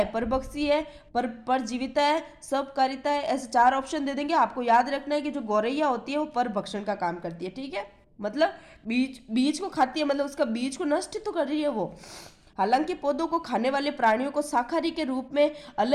परभक्षी है, परजीविता है, सबकारिता है, ऐसे 4 ऑप्शन दे देंगे। आपको याद रखना है कि जो गौरैया होती है वो परभक्षण का काम करती है, ठीक है। मतलब बीज को खाती है, मतलब उसका बीज को नष्ट तो कर रही है वो। हालांकि पौधों को खाने वाले प्राणियों को शाकाहारी के रूप में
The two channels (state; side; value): identical; both; correlation 1.00